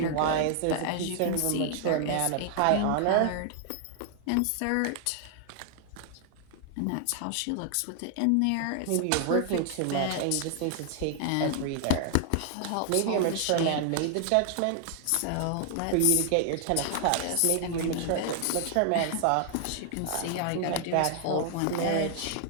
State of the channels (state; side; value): different; both; correlation 0.00